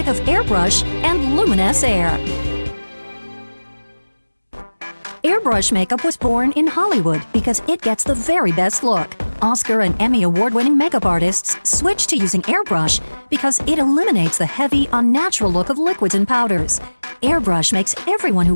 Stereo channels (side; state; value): both; inverted; correlation -1.00